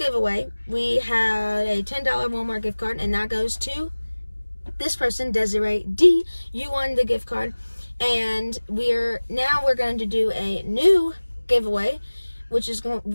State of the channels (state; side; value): inverted; both; correlation -1.00